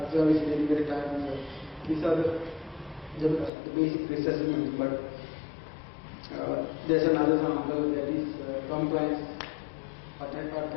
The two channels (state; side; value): drops out; right; at 3.5 s